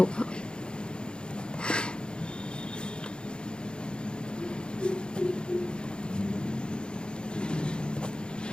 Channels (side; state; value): right; late; 0.051 ms